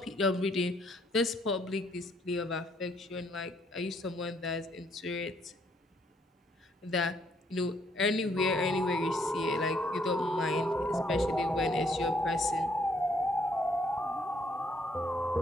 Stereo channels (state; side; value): normal; both; correlation 0.69